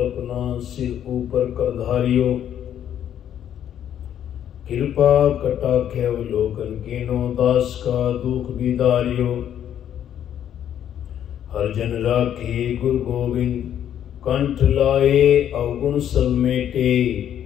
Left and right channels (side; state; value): right; quieter; 10.1 dB